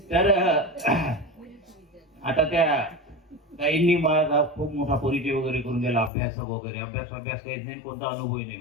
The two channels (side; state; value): right; drops out; at 6.1 s